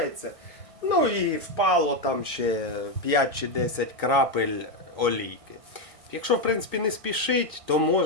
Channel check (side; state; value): left; late; 1.6 ms